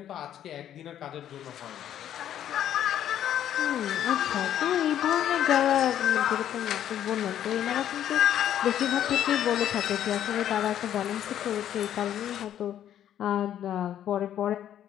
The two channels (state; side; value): quieter; right; 10.7 dB